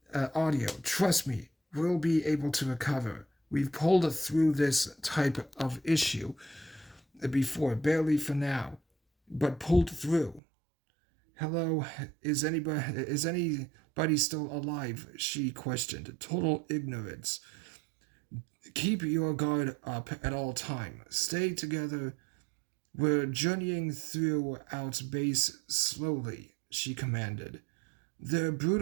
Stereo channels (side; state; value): left; drops out; at 10.4 s